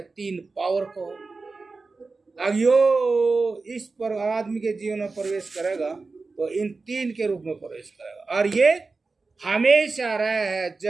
तीन पावर को। अब यो इस पर आदमी के जीवन में प्रवेश करेगा तो इन तीन के रूप में प्रवेश करेगा। और ये हमेशा रहे है,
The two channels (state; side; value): quieter; left; 3.9 dB